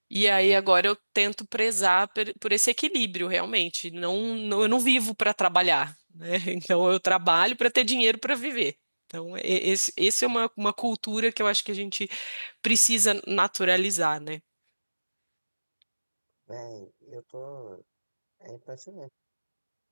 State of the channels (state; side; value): inverted; both; correlation -1.00